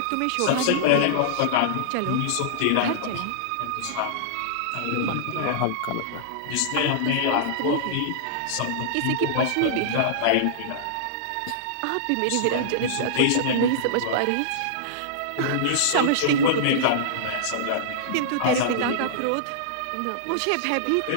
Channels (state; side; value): different; both; correlation -0.02